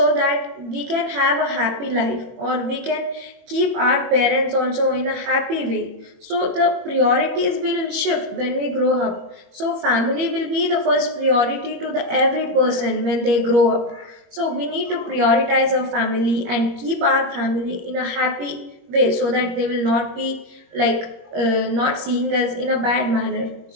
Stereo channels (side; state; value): left; late; 21 ms